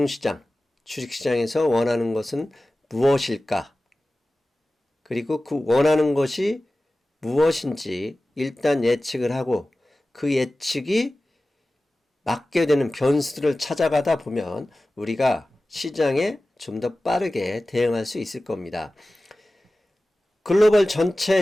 주식시장에서 원하는 것은 무엇일까? 그리고 그 원하는 것이 무엇인지 일단 예측을 하고 그 예측이 맞게 되는 변수들을 찾아가다 보면 우리가 시장에 좀 더 빠르게 대응할 수 있을 겁니다. 글로벌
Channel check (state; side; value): normal; both; correlation 0.96